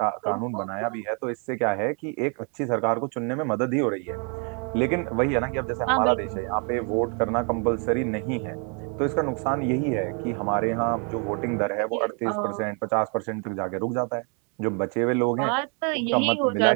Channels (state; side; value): quieter; left; 38.1 dB